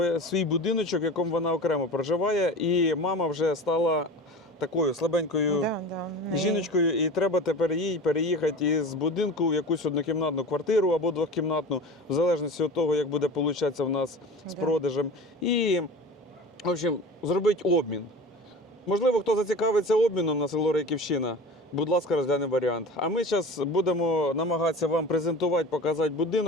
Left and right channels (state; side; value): normal; both; correlation 0.35